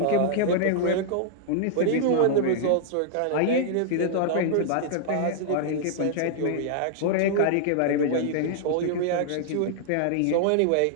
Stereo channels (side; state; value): both; different; correlation -0.01